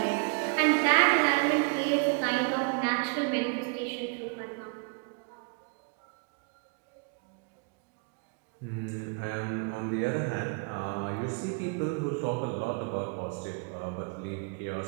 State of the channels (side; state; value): left; quieter; 36.7 dB